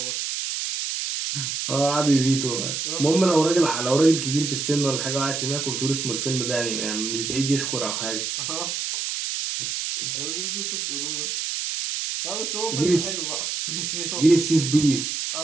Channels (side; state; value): right; noise; hiss, 3 dB below the sound